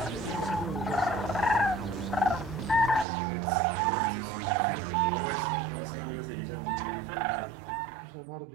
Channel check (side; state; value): left; drops out; at 3.1 s